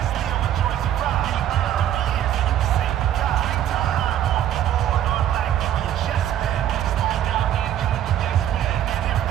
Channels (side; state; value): left; quieter; 11.2 dB